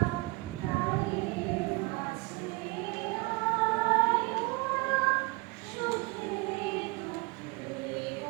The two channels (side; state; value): left; quieter; 25.2 dB